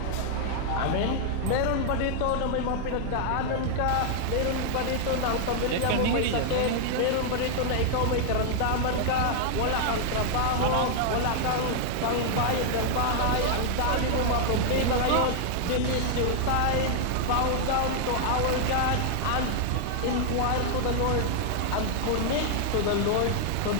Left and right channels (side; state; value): both; different; correlation 0.00